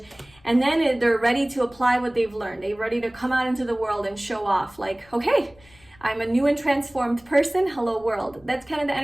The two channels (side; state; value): left; noise; rumble, 28 dB below the sound